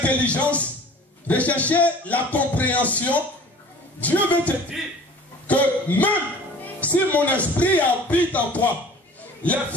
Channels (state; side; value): normal; both; correlation 0.46